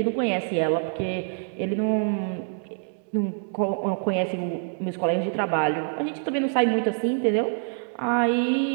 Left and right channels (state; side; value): silent; left; 58 dB below the other